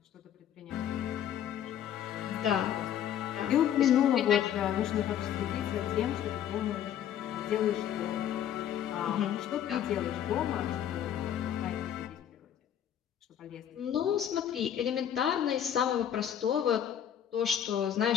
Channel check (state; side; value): quieter; right; 10.0 dB